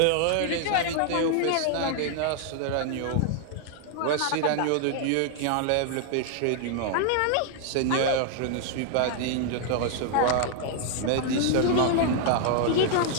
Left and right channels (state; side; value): different; both; correlation 0.00